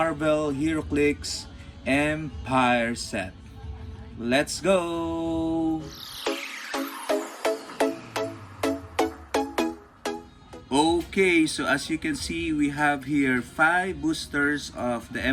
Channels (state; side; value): identical; both; correlation 1.00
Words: Heroclix Empyre set. Let's go! Okay, so as you can see, we have here 5 boosters of the